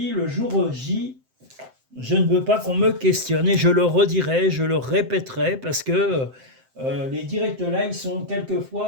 Le jour J, je ne veux pas qu'on me questionne et je le redirai, je le répéterai parce que Les directs live sont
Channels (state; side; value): late; left; 7.7 ms